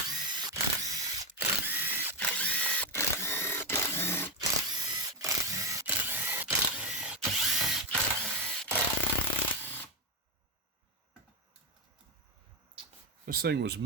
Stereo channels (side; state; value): both; normal; correlation 0.08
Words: This thing was